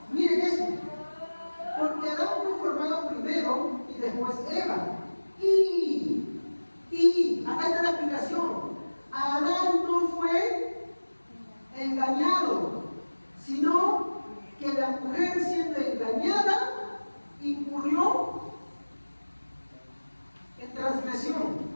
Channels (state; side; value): inverted; both; correlation -1.00